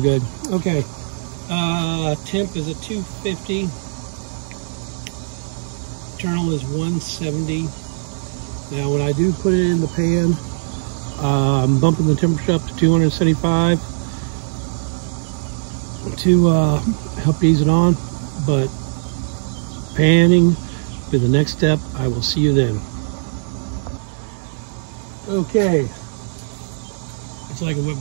good. Okay. Temp is at 250. Internal is 170. Now when I do put it in the pan, I'm bumping the temperature up to 275 to help ease it on. But panning be the next step. I will see you then. Okay. It's like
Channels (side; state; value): left; silent; digital silence